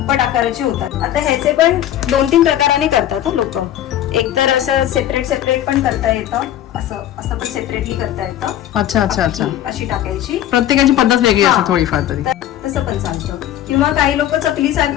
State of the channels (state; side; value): quieter; right; 12.0 dB